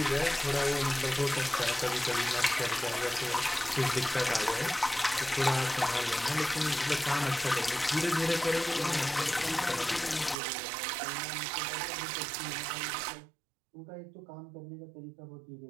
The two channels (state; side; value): drops out; left; at 10.4 s